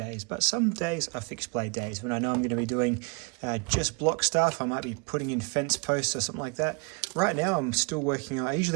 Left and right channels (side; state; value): left; quieter; 32.2 dB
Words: but some days are fixed blade days. When I know I'm going to be doing just block stuff, I might be putting in fence posts or something like that. Right now I'm still working on, I